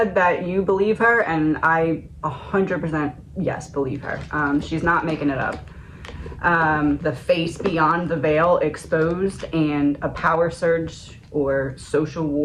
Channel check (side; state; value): both; identical; correlation 1.00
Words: that you believe her, and I 100% yes, believe her. She's not making it up. The face beyond the veil exposed and a power surge or social